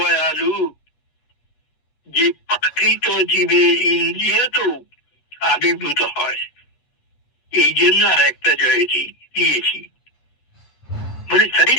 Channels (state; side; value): late; right; 8.5 ms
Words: যে প্রাকৃত জীবের ইন্দ্রিয় তো আবির্ভূত হয়। এই জন্য আর একটা জয়তী দিয়েছি। বলে তাই